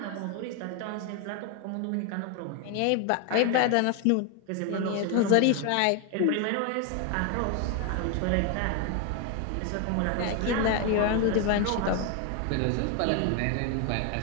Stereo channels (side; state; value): both; different; correlation 0.01